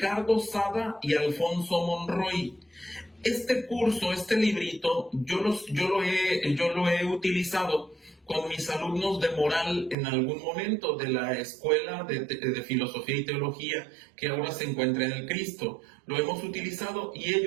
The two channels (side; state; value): left; drops out; at 10.0 s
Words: Sada y Alfonso Monroy. Este curso, este librito, yo lo he utilizado con mis alumnos de moral en algún momento de la Escuela de Filosofía y Teología que ahora se encuentra en el Cristo. Lo hemos utilizado y